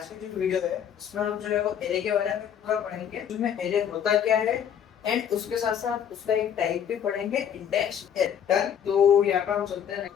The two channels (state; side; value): quieter; right; 8.7 dB